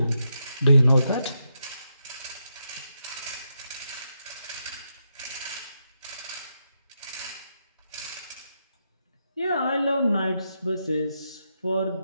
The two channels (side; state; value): both; inverted; correlation -0.83